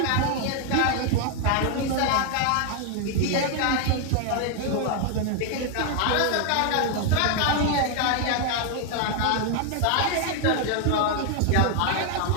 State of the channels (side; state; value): both; different; correlation 0.00